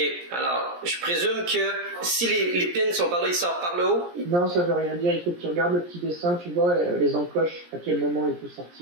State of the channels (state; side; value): late; left; 17 ms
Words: alors, je présume que si les pins sont par là, ils sortent par le haut? Non, ça veut rien dire. Il faut que tu regardes le petit dessin, tu vois les encoches, à quel moment il faut